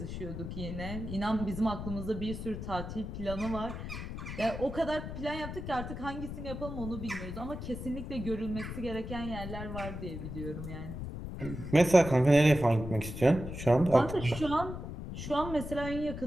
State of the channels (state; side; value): noise; left; rumble, 7 dB below the sound